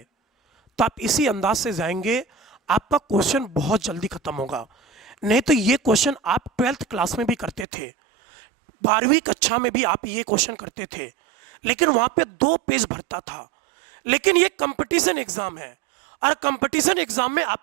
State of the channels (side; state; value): left; drops out; at 7.7 s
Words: तो आप इसी अंदाज से जाएंगे, आपका क्वेश्चन बहुत जल्दी खत्म होगा। नहीं तो ये क्वेश्चन आप 12th क्लास में भी करते थे, 12वीं कक्षा में भी आप ये क्वेश्चन करते थे, लेकिन वहां पे 2 पेज भरता था। लेकिन ये कंपटीशन एग्जाम है और कंपटीशन एग्जाम में